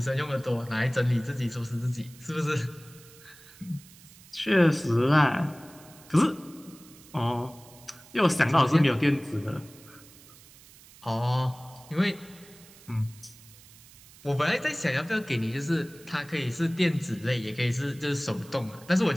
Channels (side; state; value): right; noise; hiss, 22 dB below the sound